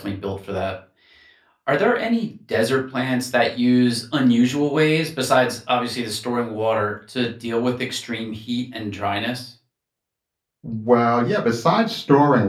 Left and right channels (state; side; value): identical; both; correlation 1.00